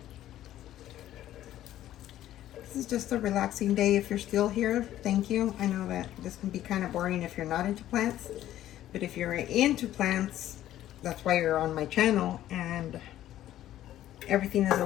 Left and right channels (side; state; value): right; quieter; 13.0 dB